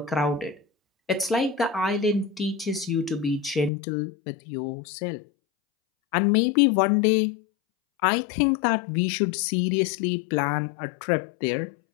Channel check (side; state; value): right; drops out; at 3.7 s